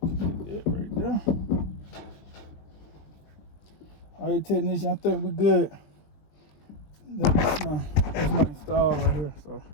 That right there. All right, technician, I think we're good. That's my install right here. So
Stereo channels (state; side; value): late; right; 20 ms